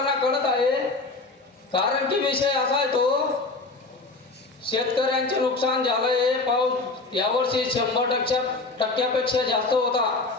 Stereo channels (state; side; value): quieter; right; 3.5 dB